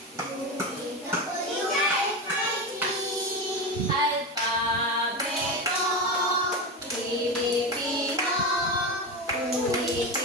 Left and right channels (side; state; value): both; normal; correlation 0.19